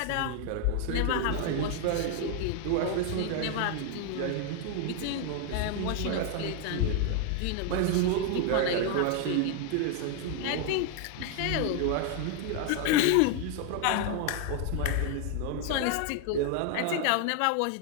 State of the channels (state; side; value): different; both; correlation 0.01